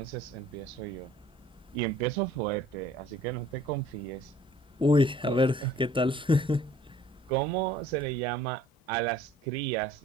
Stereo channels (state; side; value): normal; both; correlation 0.54